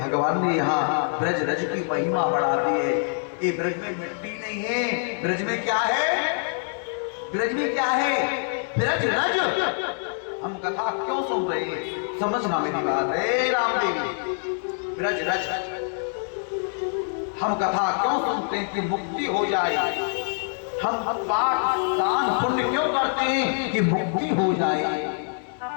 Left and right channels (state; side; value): silent; right; 62 dB below the other